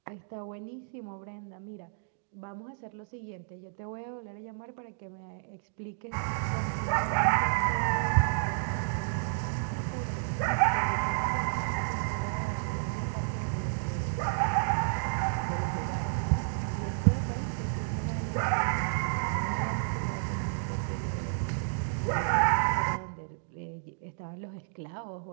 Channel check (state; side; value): silent; left; digital silence